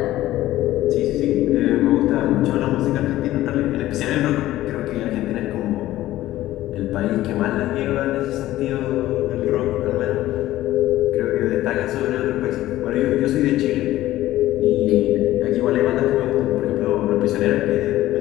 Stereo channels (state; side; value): quieter; right; 15.1 dB